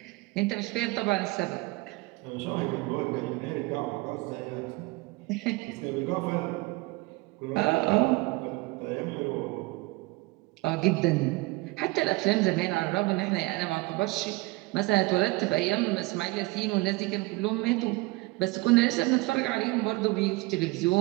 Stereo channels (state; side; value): quieter; left; 23.1 dB